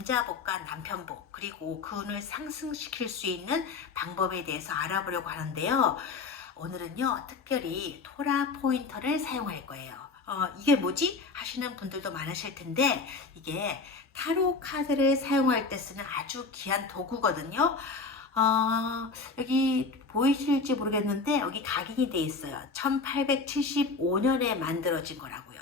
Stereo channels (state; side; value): quieter; right; 4.2 dB